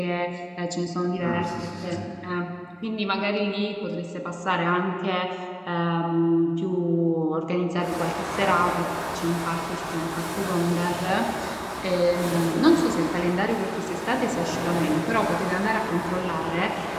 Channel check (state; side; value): identical; both; correlation 1.00